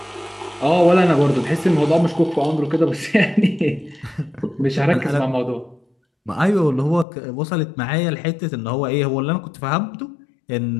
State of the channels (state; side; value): drops out; right; at 7.1 s